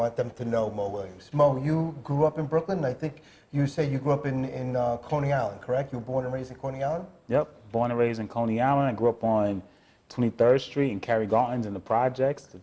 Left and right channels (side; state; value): both; identical; correlation 1.00